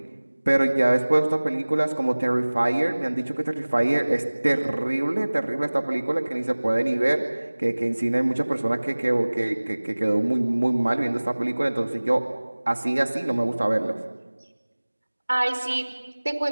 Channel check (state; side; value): inverted; both; correlation -1.00